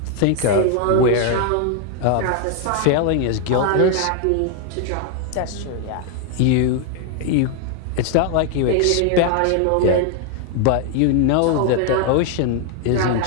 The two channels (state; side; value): different; both; correlation 0.00